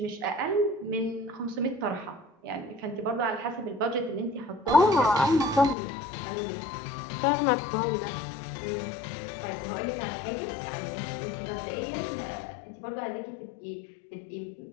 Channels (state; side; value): drops out; right; at 5.8 s